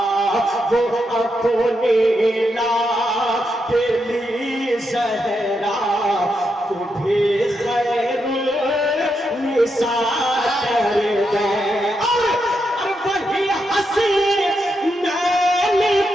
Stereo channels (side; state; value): both; normal; correlation 0.83